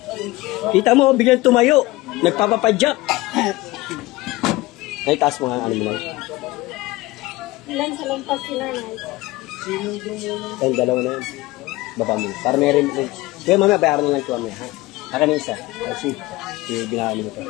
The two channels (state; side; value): quieter; right; 19.7 dB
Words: Kita mo, biglang tumayo. Nagpapapadyak. Ay, taas mo nga, ano mo lang. Ilan sa lampas si nanay? Ayun, dalawa na yun. Baba mo. Para may rin. Kaya mamaya, bayaran na lang ito mamaya. Ha? Haka na isa. Ay, si. Binahali mo ito.